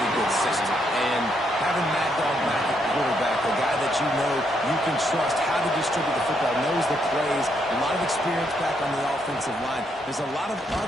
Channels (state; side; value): normal; both; correlation 0.76